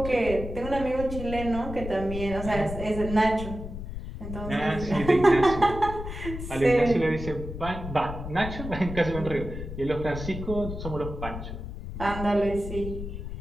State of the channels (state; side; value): noise; left; rumble, 8 dB below the sound